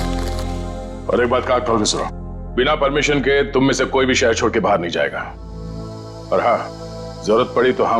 और एक बात का खोल के सुनो, बिना परमिशन के तुम में से कोई भी शहर छोड़ के बाहर नहीं जाएगा। और हाँ, जरूरत पड़ी तो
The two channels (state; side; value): identical; both; correlation 1.00